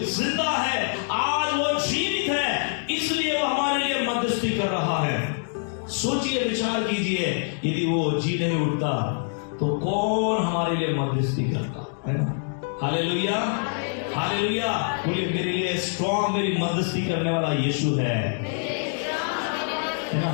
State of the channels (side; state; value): right; silent; digital silence